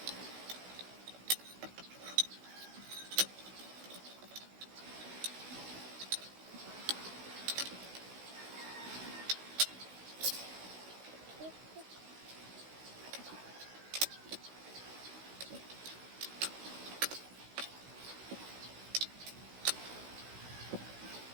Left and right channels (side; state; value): left; late; 16 ms